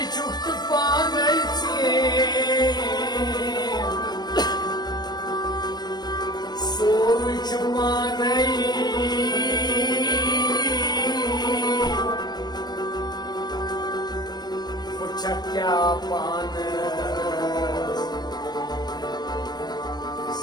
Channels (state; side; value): late; right; 0.20 ms